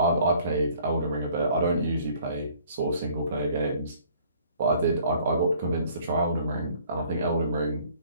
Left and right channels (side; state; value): both; inverted; correlation -0.58